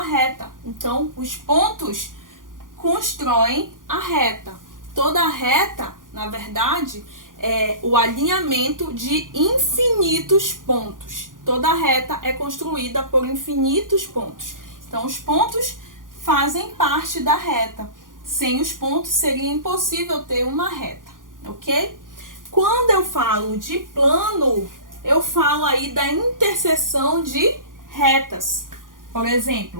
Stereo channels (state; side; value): late; left; 0.89 ms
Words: reta. Então, os pontos constroem a reta. Toda reta, na verdade, é o alinhamento de infinitos pontos. Toda reta é construída por infinitos pontos. Então, os pontos fazem parte da reta. Sem os pontos, seria impossível ter uma reta, ok? Quando eu falo de plano, eu falo aí da interseção de retas. Por